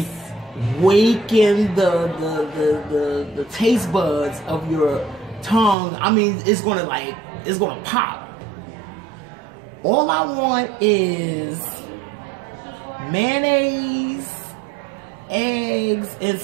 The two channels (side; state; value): left; drops out; at 5.8 s